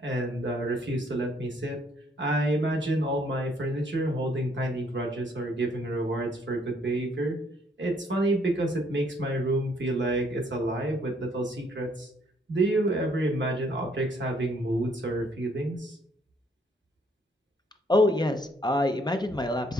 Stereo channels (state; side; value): normal; both; correlation 0.66